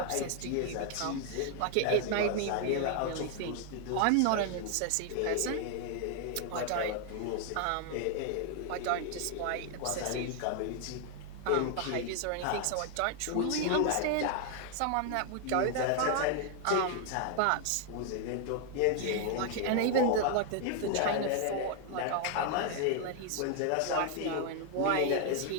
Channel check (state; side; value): different; both; correlation 0.00